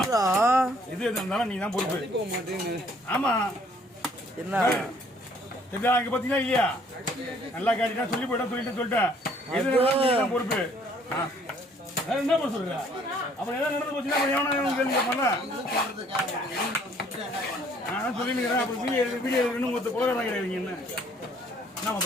இது இருந்தாலும் நீ தான் பொறுப்பு. ஆமா என்ன இங்க பாத்தீங்கன்னா இல்லையா நல்லா காட்டினா சொல்லி போயிட்டா சொல்லிட்டேன் எது தான் பொறுப்பு. என்ன பண்ண சொல்ற அப்புறம் ஏதாவது நடந்து போச்சுன்னா எவனா கேள்வி கேட்பாங்க. நான் சொல்லிக்கிறேன் அப்புறம் வீடியோ இன்னும் ஒருத்தர் குலகாரம் கிடையாதுங்க. என்ன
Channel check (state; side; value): normal; both; correlation 0.61